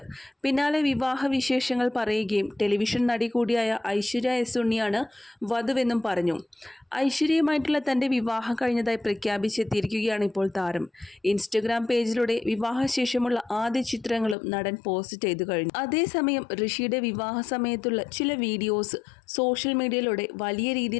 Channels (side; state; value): right; drops out; at 14.4 s